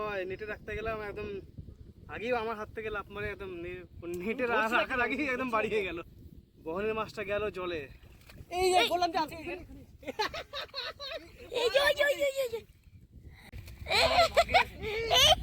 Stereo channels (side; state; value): both; identical; correlation 1.00